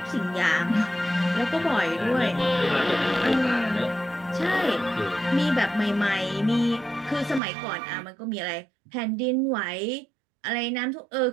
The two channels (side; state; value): left; drops out; at 7.4 s